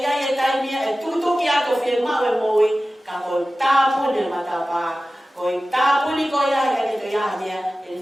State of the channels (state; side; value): normal; both; correlation 0.96